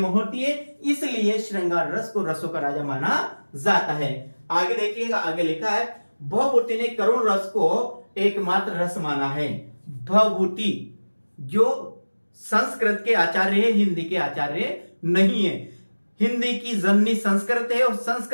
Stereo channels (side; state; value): both; inverted; correlation -1.00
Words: होती है, इसलिए श्रृंगार रस को रसों का राजा माना जाता है। आगे देखिएगा, आगे लिखा है भवभूति ने करुण रस को एकमात्र रस माना है। भवभूति जो संस्कृत के आचार्य है, हिंदी के आचार्य नहीं है। हिंदी की जननी संस्कृत है और